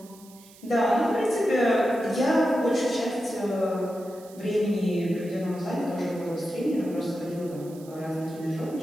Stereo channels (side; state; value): right; noise; hiss, 23 dB below the sound